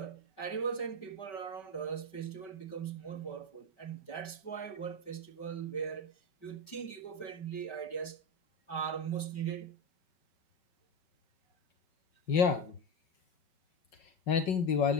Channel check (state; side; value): late; right; 5.2 ms